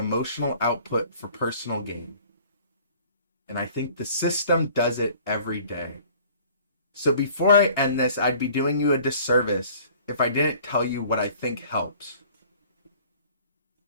output for personal gain. And I think the system does it every day. So before I end this, I'd be doing you a disservice if I didn't tell you what I think helps.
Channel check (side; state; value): both; inverted; correlation -0.51